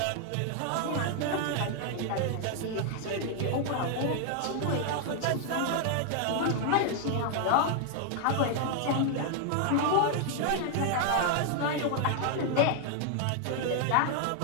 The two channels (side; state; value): both; different; correlation 0.00